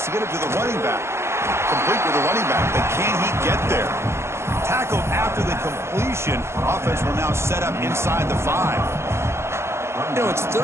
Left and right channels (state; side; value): late; left; 0.13 ms